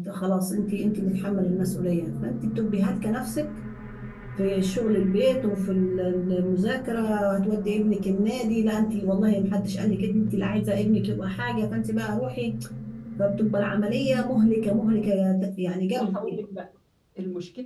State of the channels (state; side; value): identical; both; correlation 1.00